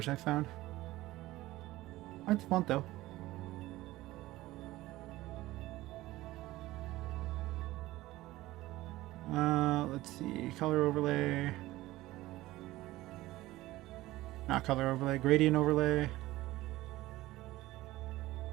I found. I like the font though. Let's see, color overlay. Not color overlay, gradient overlay.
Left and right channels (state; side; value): quieter; left; 17.4 dB